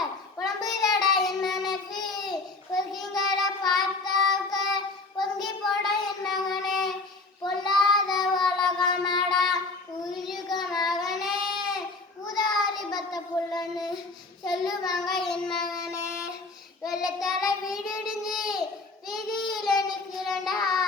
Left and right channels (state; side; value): quieter; right; 3.5 dB